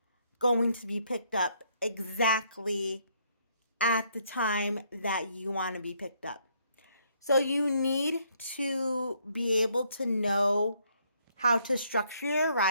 going to be picked up exactly at the time that you want to be picked up. So you need to be able to know how to structure your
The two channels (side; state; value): both; inverted; correlation -0.70